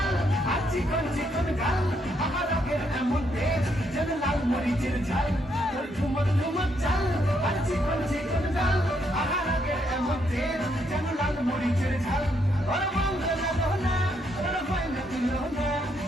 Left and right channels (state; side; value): normal; both; correlation 0.75